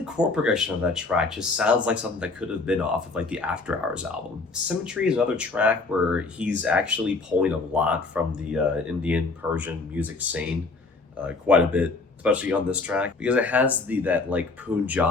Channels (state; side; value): quieter; right; 3.8 dB